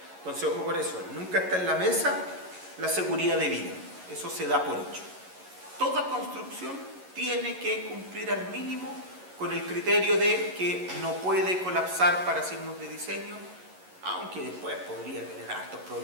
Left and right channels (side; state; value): left; late; 11 ms